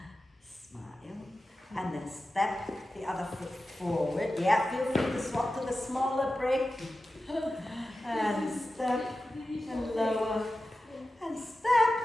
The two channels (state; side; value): normal; both; correlation 0.93